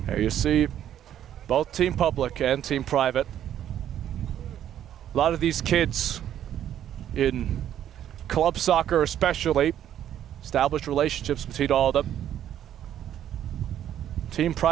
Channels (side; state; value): left; quieter; 10.7 dB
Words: There you see both Team Public and Team Private. A lot of these kids in club soccer especially, established relationships between all of them. Team